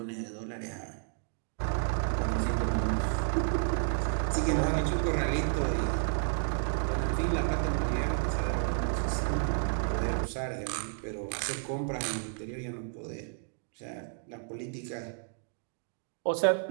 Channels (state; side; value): silent; left; digital silence